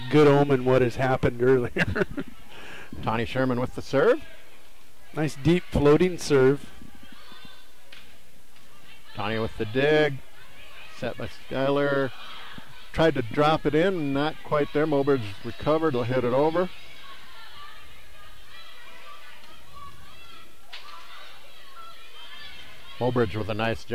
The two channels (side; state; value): both; identical; correlation 1.00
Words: good omen what has happened earlier. Tawny Sherman with the serve. Nice deep floating serve. Tawny with the dig. Set by Skylar. Tried to drop it in, not quite there. Mobridge recovered, will hit it over. Mobridge with a nice